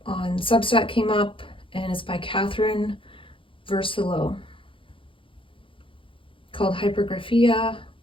on Substack came up, and it's by Catherine Versilo, called Hypergraphia,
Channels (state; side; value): late; right; 0.25 ms